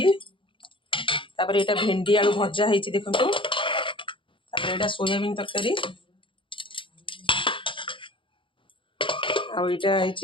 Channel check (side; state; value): right; late; 0.25 ms